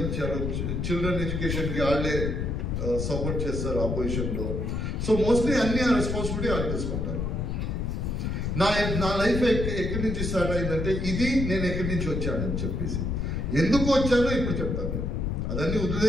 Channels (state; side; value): noise; left; rumble, 1 dB below the sound